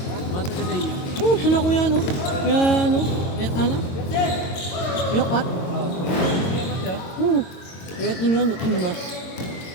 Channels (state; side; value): late; right; 22 ms